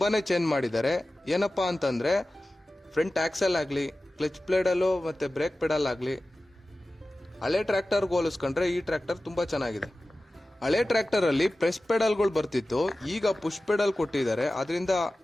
ಚೇಂಜ್ ಮಾಡಿದ್ದಾರೆ. ಏನಪ್ಪಾ ಅಂತಂದ್ರೆ ಫ್ರಂಟ್ ಆಕ್ಸೆಲ್ ಆಗಲಿ, ಕ್ಲಚ್ ಪ್ಲೇಡಲ್ಲೂ ಮತ್ತು ಬ್ರೇಕ್ ಪೆಡಲ್ ಆಗಲಿ ಹಳೆ ಟ್ರ್ಯಾಕ್ಟರ್ಗೆ ಹೋಲಿಸ್ಕೊಂಡ್ರೆ ಈ ಟ್ರ್ಯಾಕ್ಟರ್ ತುಂಬ ಚೆನ್ನಾಗಿದೆ. ಹಳೆ ಟ್ರ್ಯಾಕ್ಟರಲ್ಲಿ ಪ್ರೆಸ್ ಪೆಡಲ್ಗಳು ಬರ್ತಿತ್ತು, ಈಗ ಪುಷ್ ಪೆಡಲ್ ಕೊಟ್ಟಿದ್ದಾರೆ. ಅದರಿಂದ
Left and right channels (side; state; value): both; normal; correlation 0.96